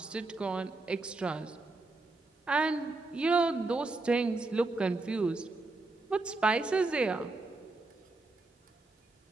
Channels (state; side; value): quieter; left; 3.3 dB